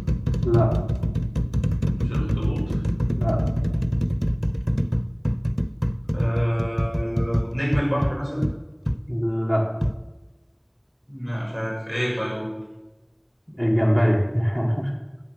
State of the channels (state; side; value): identical; both; correlation 1.00